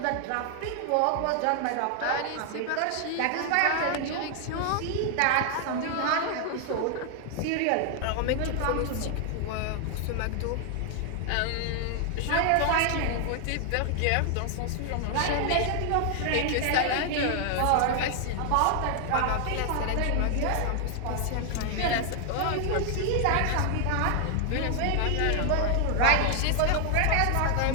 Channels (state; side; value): different; both; correlation 0.00